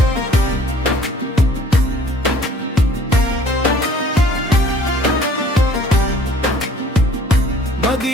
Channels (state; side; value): normal; both; correlation 0.53